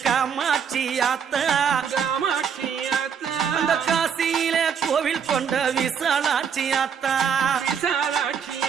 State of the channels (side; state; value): left; quieter; 7.3 dB